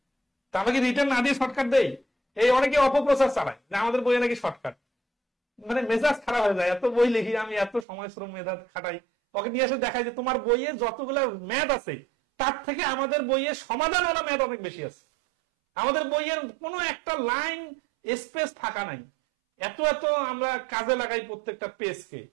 তা আমরা কি রিটার্ন না দিয়ে শর্টকাট দেই? এই অনেকে অপপ্রচার চালায় যে আমাদের বইয়ে নাকি শর্টকাট, মানে মেজাজ খারাপ হয়ে যায়। এত বই লিখি আমি, এত সময় শ্রম মেধা খাটাই, ওকে নিয়ে এসে দেখায় যে তোমার বইয়ে যতগুলো ম্যাথ আছে তার থেকে আমাদের বইয়ে সমাধানওয়ালা ম্যাথ অনেক বেশি আছে। আমাদের বইয়ের কোনো একটা লাইন স্পেস ফাঁকা নাই, এত এত আমরা কাজে লাগাই প্রত্যেকটা পেজকে।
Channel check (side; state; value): left; drops out; at 7.9 s